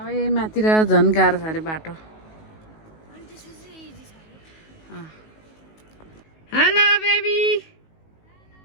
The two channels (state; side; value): late; right; 19 ms